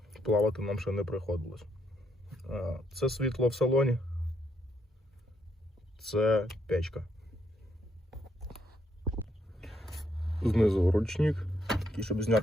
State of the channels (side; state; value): both; normal; correlation 0.75